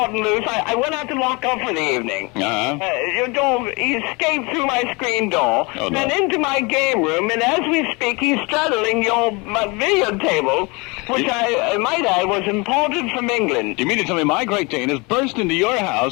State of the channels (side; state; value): right; quieter; 27.6 dB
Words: loose. I went out to lock up for the evening. Your dog, he escaped through my screen door, and into my game room, and as we speak, he's straddling my billiard table, which I might add was imported from England. You mean to tell me my Great Dane has burst into your